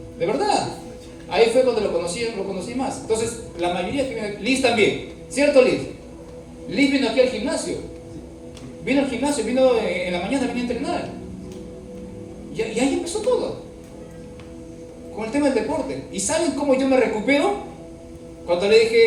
De verdad. Ahí fue cuando lo conocí más. Entonces, la mayoría que viene, Liz también, ¿cierto Liz? Liz vino aquí al gimnasio. Vino al gimnasio, vino en la mañana, vino a entrenar. Y ahí empezó todo. Con el tema del deporte. ¿Y saben cómo yo me recupero? Cuando le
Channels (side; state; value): both; identical; correlation 1.00